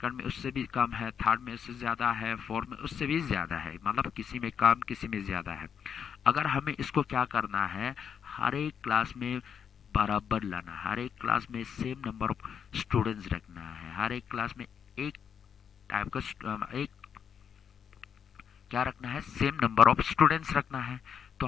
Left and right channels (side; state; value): right; quieter; 7.6 dB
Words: में उससे भी कम है, थर्ड में उससे ज़्यादा है, फोर्थ में उससे भी ज़्यादा है, मतलब किसी में कम किसी में ज़्यादा है। अगर हमें इसको क्या करना है, हर एक क्लास में बराबर लाना, हर एक क्लास में सेम नंबर ऑफ स्टूडेंट्स रखना है, हर एक क्लास में एक टाइप का एक क्या रखना है, सेम नंबर ऑफ स्टूडेंट्स रखना है। तो